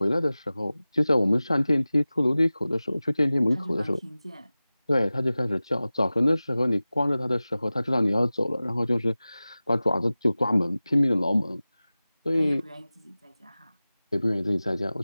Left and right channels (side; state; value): both; inverted; correlation -0.97